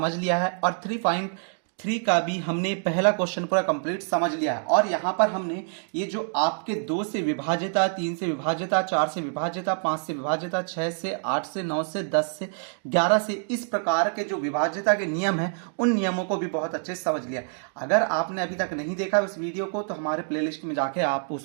लिया है और 3.3 का भी हमने पहला क्वेश्चन पूरा कंप्लीट समझ लिया है। और यहाँ पर हमने ये जो आपके 2 से विभाजिता, 3 से विभाजिता, 4 से विभाजिता, 5 से विभाजिता, 6 से, 8 से, 9 से, 10 से, 11 से, इस प्रकार के जो विभाजिता के नियम हैं उन नियमों को भी बहुत अच्छे से समझ लिया। अगर आपने अभी तक नहीं देखा उस वीडियो को तो हमारे प्लेलिस्ट में जाके आप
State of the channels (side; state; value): left; silent; 61 dB below the other